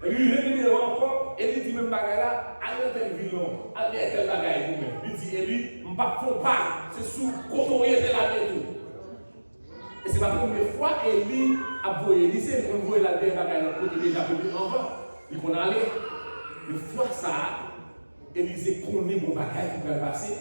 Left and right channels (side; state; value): both; inverted; correlation -1.00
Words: Et lui, il encore, et il dit même bagage là, allez dans tel ville, allez dans tel bagage vous-même. Il dit Élie, je ne faut pas, c'est sous côtoyer de la main. Et c'est la première fois Élie a voyé Élisée, on voit la dernière bagage là, côté déjà venu en bas. Il qu'on allait, une fois ça, Élisée connaît mon bagage qui va passer.